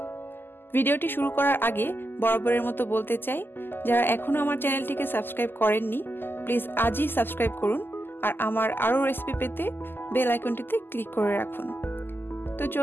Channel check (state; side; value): late; right; 0.097 ms